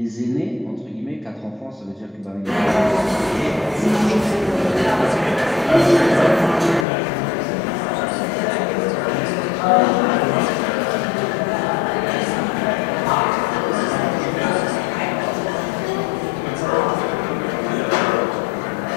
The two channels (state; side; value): drops out; right; at 6.9 s